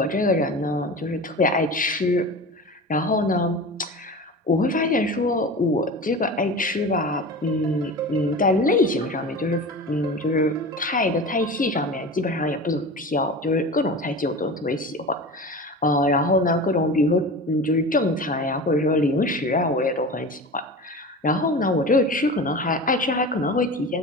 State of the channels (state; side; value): normal; both; correlation 0.32